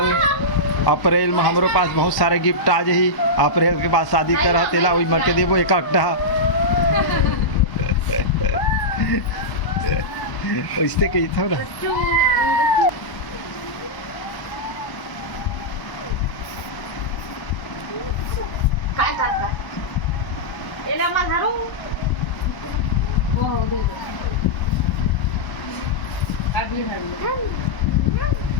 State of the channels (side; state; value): right; late; 1.0 ms